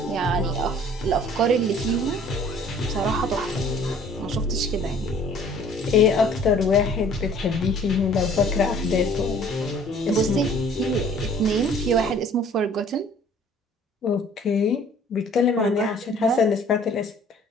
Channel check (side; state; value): both; normal; correlation 0.53